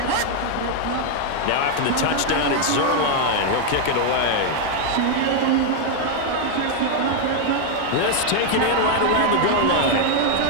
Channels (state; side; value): different; both; correlation 0.00